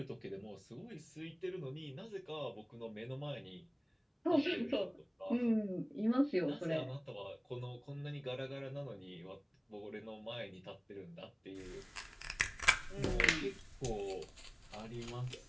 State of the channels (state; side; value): identical; both; correlation 1.00